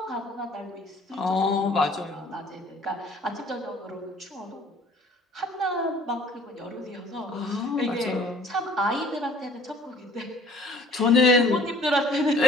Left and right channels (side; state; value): both; normal; correlation 0.55